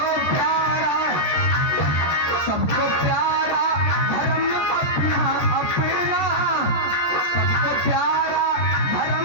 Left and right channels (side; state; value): right; late; 14 ms